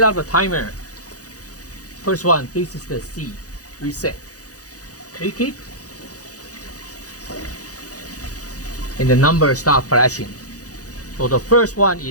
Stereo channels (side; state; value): right; late; 0.67 ms